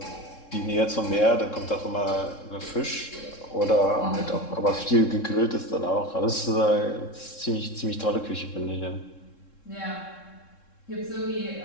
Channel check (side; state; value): right; late; 3.7 ms